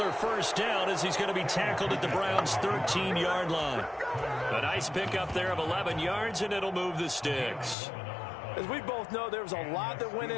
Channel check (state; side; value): drops out; right; at 7.8 s